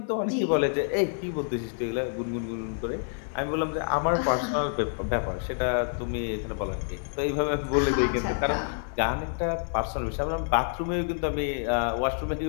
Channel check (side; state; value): right; silent; 59 dB below the other